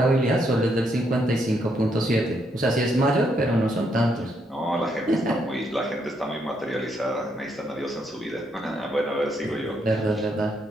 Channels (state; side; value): normal; both; correlation 0.75